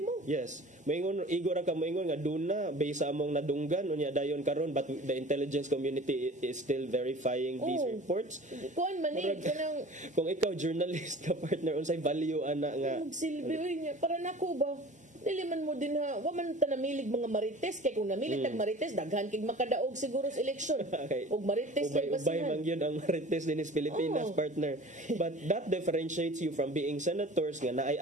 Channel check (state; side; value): normal; both; correlation 0.42